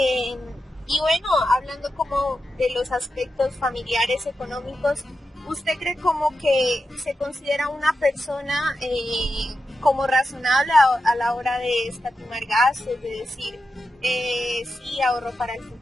y bueno, hablando como de los aspectos familiares, económicos, ¿usted cree como que se considera una persona como razonable a la hora de escatimar gastos, de decir sí, ahorro para el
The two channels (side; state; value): both; normal; correlation 0.89